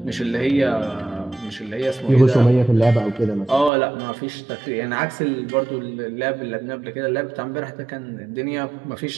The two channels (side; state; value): left; drops out; at 3.7 s